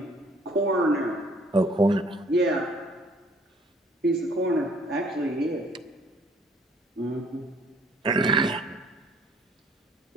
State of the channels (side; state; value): both; normal; correlation 0.59